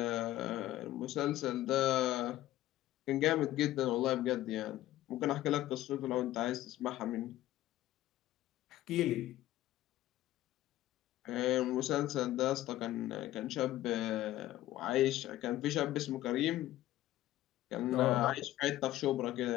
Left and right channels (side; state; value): right; quieter; 14.8 dB